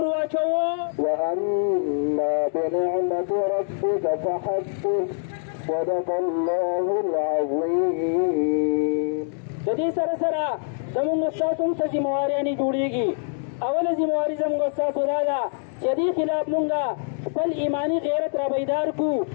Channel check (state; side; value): silent; right; digital silence